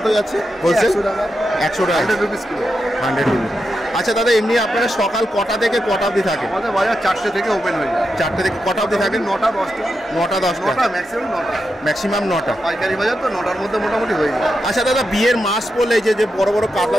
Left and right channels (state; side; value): normal; both; correlation 0.87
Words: যাচ্ছে হোলসেল? 100 টাকা। 100 টাকা, 100 রুপিস কিলো। 100 রুপিস। আচ্ছা দাদা, এমনি আপনারা সকাল কটা থেকে কটা অবধি থাকে? আমাদের বাজার 4টে থেকে ওপেন হয়ে যায়। 4টে থেকে কটা অবধি থাকে? 9টা 10টা। 9টা 10টা, ম্যাক্সিমাম 9টা। ম্যাক্সিমাম 9টা। পাইকারি বাজার তো 9টার মধ্যে মোটামুটি হয়ে যায়। আচ্ছা দাদা, বিয়ের মাস পড়লে যে বড় বড়